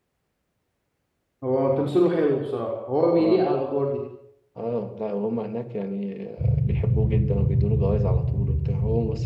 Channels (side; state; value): both; identical; correlation 1.00